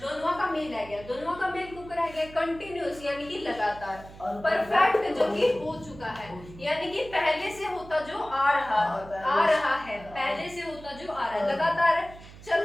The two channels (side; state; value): right; noise; hum, 18 dB below the sound